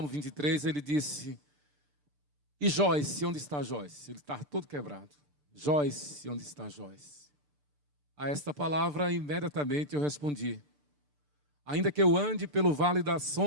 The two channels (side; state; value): left; late; 6.8 ms